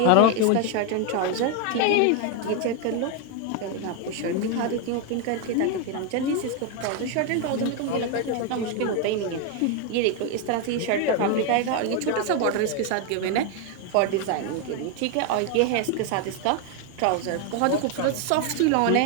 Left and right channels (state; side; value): different; both; correlation 0.01